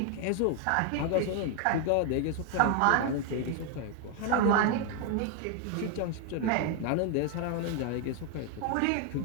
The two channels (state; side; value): different; both; correlation 0.01